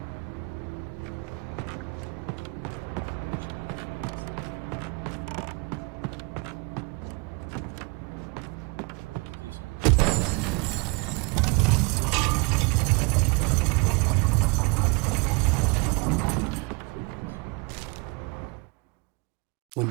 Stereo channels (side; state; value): left; quieter; 30.3 dB